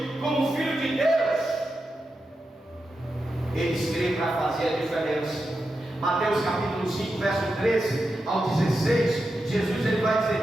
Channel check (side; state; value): both; normal; correlation 0.89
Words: como Filho de Deus, eles creem para fazer a diferença. Mateus capítulo 5, verso 13 ao 16, Jesus ele vai